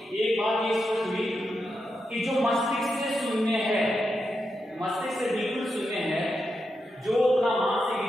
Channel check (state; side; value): normal; both; correlation 0.86